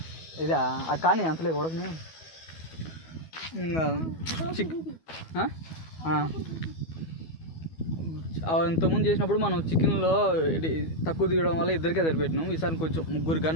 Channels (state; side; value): late; right; 12 ms